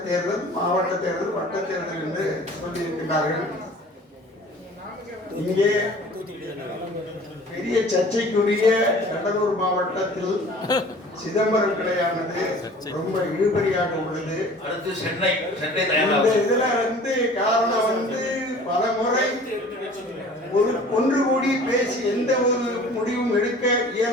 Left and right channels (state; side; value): normal; both; correlation 0.46